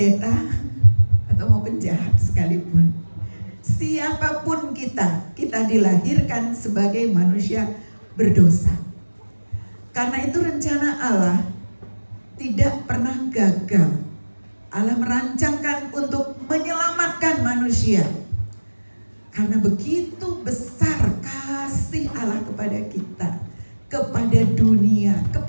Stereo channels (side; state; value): both; inverted; correlation -1.00